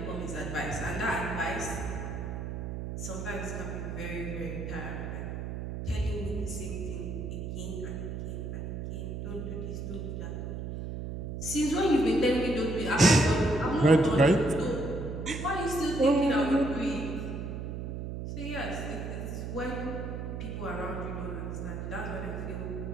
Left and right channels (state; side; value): noise; right; hum, 5 dB below the sound